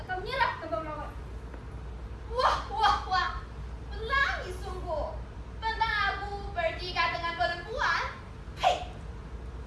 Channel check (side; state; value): both; identical; correlation 1.00